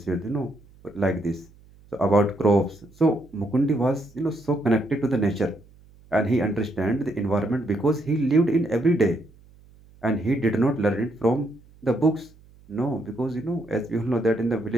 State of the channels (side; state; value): right; noise; hum, 26 dB below the sound